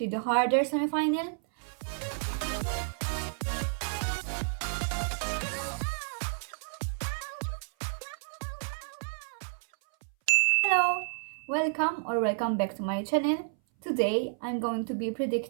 the harder semi-final. Hello, welcome back to my channel. Today I'm going to be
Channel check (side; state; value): left; silent; 57 dB below the other